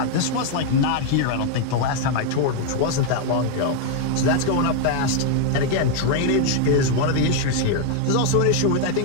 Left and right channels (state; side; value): different; both; correlation 0.00